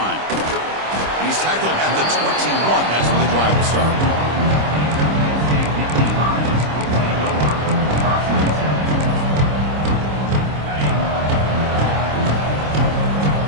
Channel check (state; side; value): late; left; 26 ms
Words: He's tackled at the 21. That's where the drive will start.